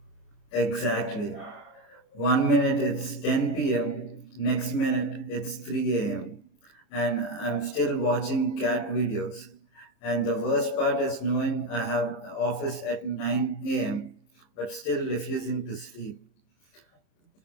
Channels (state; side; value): late; right; 34 ms